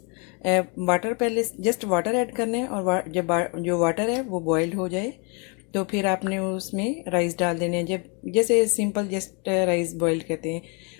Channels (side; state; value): right; quieter; 34.0 dB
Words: वाटर पहले जस्ट वाटर ऐड करना है। और जब जो वाटर है वो बॉइल्ड हो जाए तो फिर आपने उसमें राइस डाल देने हैं, जब जैसे सिंपल जस्ट राइस बॉइल्ड करते हैं।